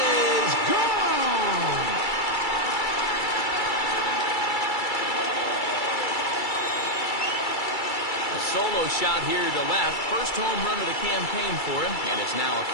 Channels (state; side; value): late; right; 2.3 ms